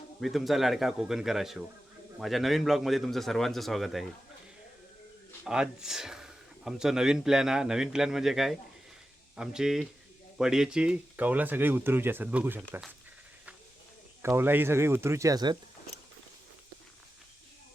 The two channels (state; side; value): normal; both; correlation 0.92